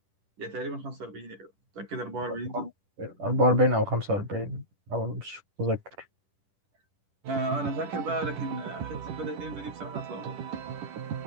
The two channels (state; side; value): late; left; 10 ms